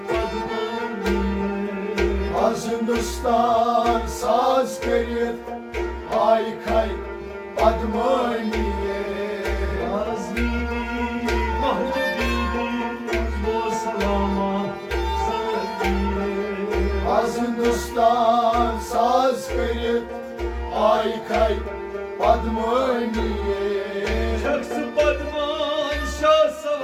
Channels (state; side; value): identical; both; correlation 1.00